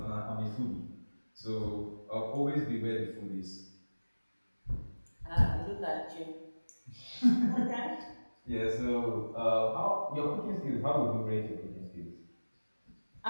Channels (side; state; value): both; inverted; correlation -1.00